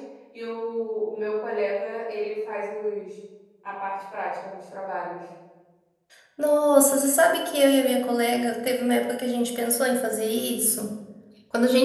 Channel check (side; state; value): both; identical; correlation 1.00